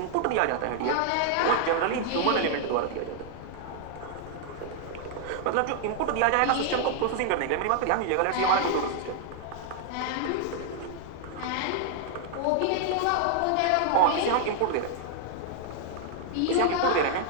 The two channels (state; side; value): different; both; correlation 0.00